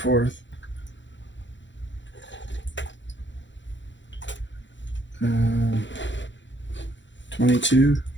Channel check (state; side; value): late; right; 0.54 ms